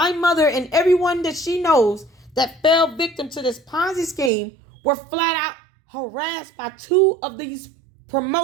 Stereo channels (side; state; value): left; drops out; at 4.3 s